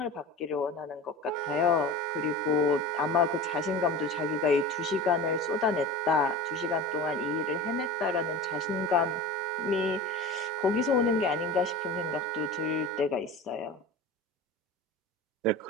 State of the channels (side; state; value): both; normal; correlation 0.33